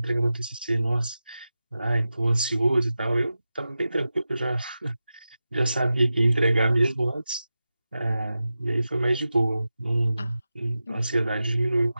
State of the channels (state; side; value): inverted; both; correlation -0.93